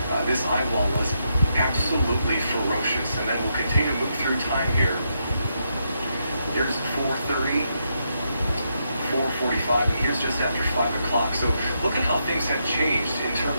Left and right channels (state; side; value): inverted; both; correlation -0.81